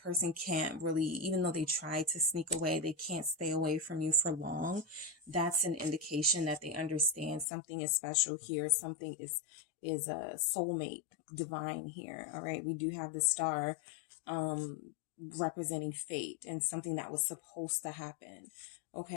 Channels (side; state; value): right; drops out; at 7.5 s